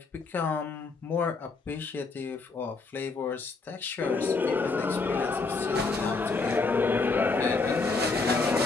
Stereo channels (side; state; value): right; quieter; 4.0 dB